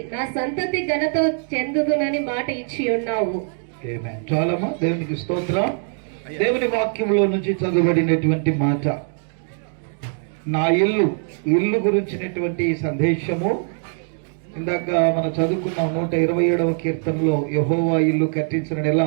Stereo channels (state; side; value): silent; left; 60 dB below the other